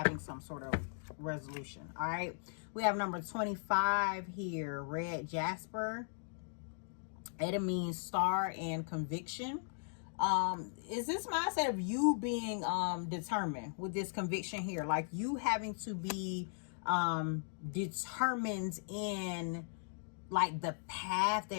some sort of resolution. All right, we have number 25 here, red jasper, It means star and conviction. Is this mindset of you being determined with this conviction here, like you having to be determined in like the path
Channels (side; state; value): right; silent; digital silence